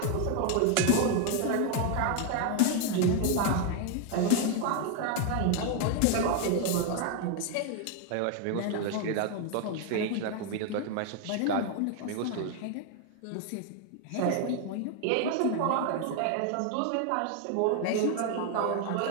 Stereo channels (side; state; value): both; different; correlation 0.01